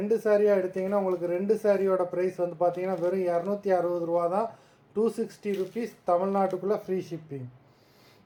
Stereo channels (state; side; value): identical; both; correlation 1.00